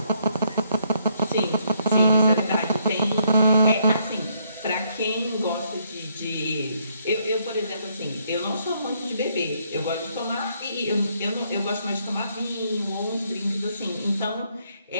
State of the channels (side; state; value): both; inverted; correlation -0.72